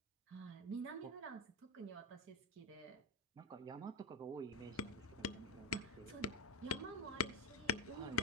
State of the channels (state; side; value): normal; both; correlation 0.10